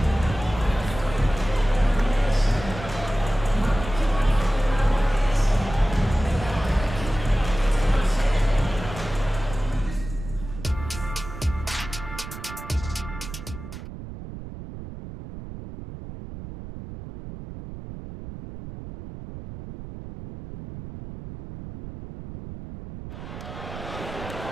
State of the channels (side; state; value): right; noise; rumble, 11 dB below the sound